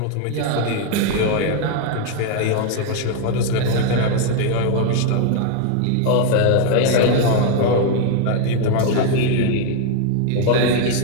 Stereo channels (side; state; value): both; different; correlation 0.01